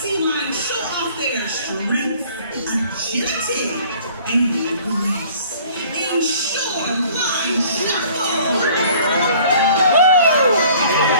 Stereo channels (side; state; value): both; inverted; correlation -0.52